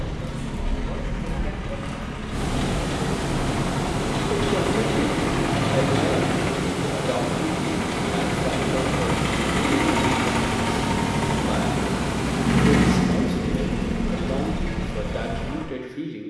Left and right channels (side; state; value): both; identical; correlation 1.00